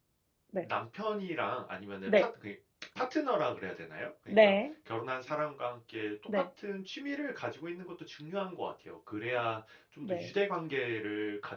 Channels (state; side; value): identical; both; correlation 1.00